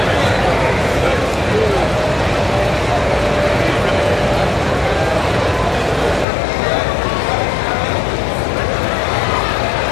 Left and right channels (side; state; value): right; drops out; at 6.2 s